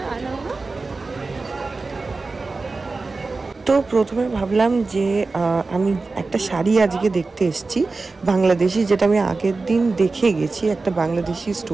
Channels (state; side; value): quieter; left; 3.8 dB